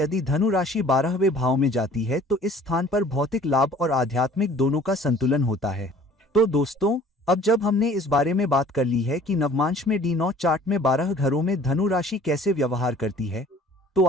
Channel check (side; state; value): both; normal; correlation 0.51